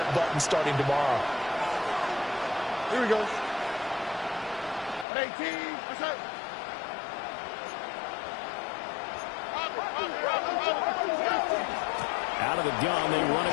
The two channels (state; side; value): drops out; right; at 5.1 s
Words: button starting tomorrow. Here we go. 18. What's up? Out of the gun, they run